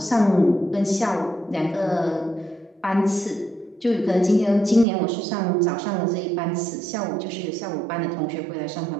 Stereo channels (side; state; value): left; drops out; at 4.9 s